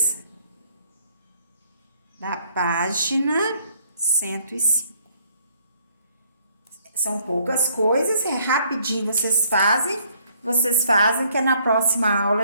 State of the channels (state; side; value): inverted; both; correlation -0.65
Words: da página 105. São poucas coisas, rapidinho vocês fazem, que na próxima aula